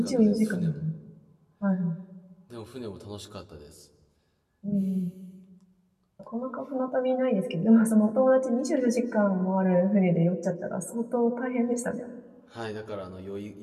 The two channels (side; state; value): both; identical; correlation 1.00